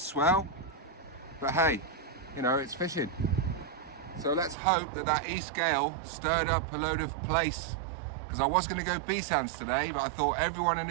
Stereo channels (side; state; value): left; drops out; at 4.5 s